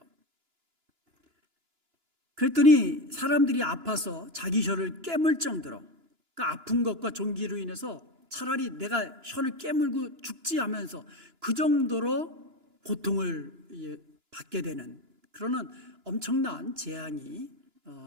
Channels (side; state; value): left; late; 2.9 ms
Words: 그랬더니 사람들이 아파서 자기 혀를 깨물 정도로, 그러니까 아픈 것과 종기로 인해서 차라리 내가 혀를 깨물고 죽지 하면서 그 정도로 고통을 받게 되는 그런 엄청난 재앙이